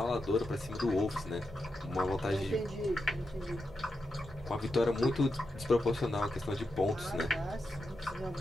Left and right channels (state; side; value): normal; both; correlation 0.87